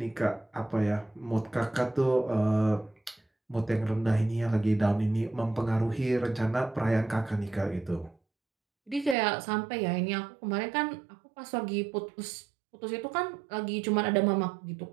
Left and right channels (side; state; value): left; drops out; at 9.2 s